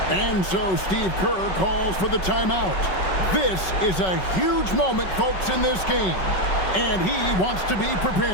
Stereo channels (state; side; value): late; right; 5.3 ms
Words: And so Steve Kerr calls for the timeout. This is a huge moment, folks, in this game. And he wants to be